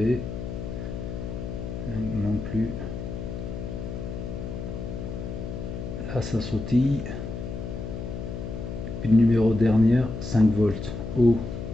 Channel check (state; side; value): noise; left; hum, 6 dB below the sound